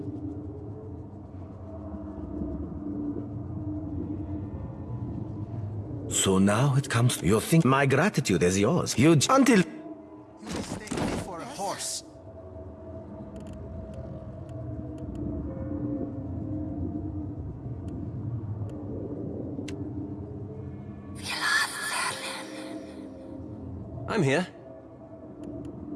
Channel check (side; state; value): both; identical; correlation 1.00